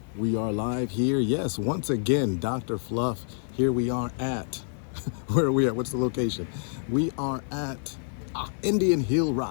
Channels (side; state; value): right; silent; 60 dB below the other